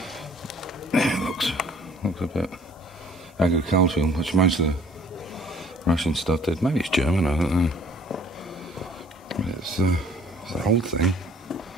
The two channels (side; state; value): both; normal; correlation 0.56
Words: Yeah, it looks a bit agricultural, which most of the Russian stuff did. Maybe it's German, I don't know. But it's an old thing.